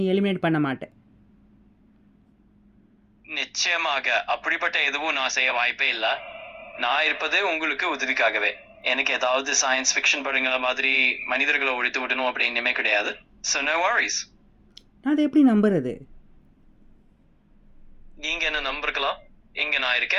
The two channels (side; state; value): both; identical; correlation 1.00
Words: எலிமினேட் பண்ண மாட்டேன். நிச்சயமாக அப்படிப்பட்ட எதுவும் நான் செய்ய வாய்ப்பே இல்லை. நான் இருப்பது உங்களுக்கு உதவிக்காகவே. எனக்கு ஏதாவது சயின்ஸ் ஃபிக்ஷன் படங்கள மாதிரி மனிதர்களை ஒழித்து விடணும் அப்படின்னுமே கிடையாது. So no worries. நான் அதை எப்படி நம்புறது? நீங்க என்ன நம்பிருக்கலாம். இங்க நான்